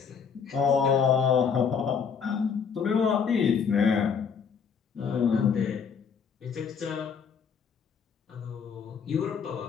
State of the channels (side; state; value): right; quieter; 6.5 dB